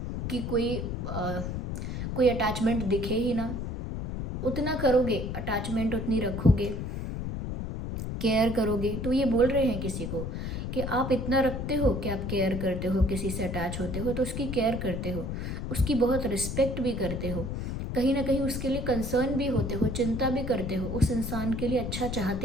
कि कोई अटैचमेंट दिखे ही ना। उतना करोगे, अटैचमेंट उतनी रखोगे, केयर करोगे। तो ये बोल रहे हैं किसी को कि आप इतना रखते हो कि आप केयर करते हो, किसी से अटैच होते हो तो उसकी केयर करते हो, उसकी बहुत रिस्पेक्ट भी करते हो, कहीं ना कहीं उसके लिए कंसर्न भी होते हो, चिंता भी करते हो, उस इंसान के लिए अच्छा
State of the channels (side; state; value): left; noise; rumble, 4 dB below the sound